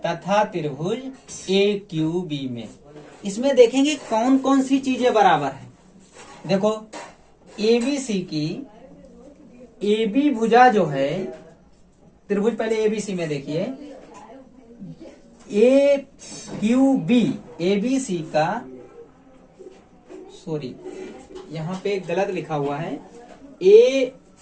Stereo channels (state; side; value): identical; both; correlation 1.00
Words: तथा त्रिभुज AQB में। इसमें देखेंगे कौन कौन सी चीजें बराबर है। देखो एबीसी की AB भुजा जो है, त्रिभुज पहले एबीसी में देखिए, AQB एबीसी का, सॉरी यहाँ पे गलत लिखा हुआ है,